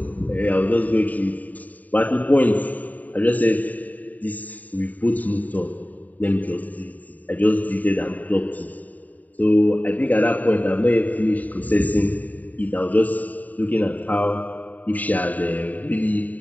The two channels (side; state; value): right; late; 0.076 ms